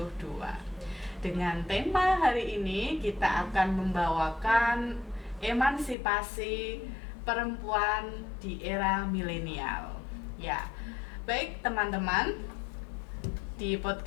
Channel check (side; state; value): right; drops out; at 6.0 s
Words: Dengan tema hari ini kita akan membawakan emansipasi perempuan di era milenial. Ya, baik teman-teman, di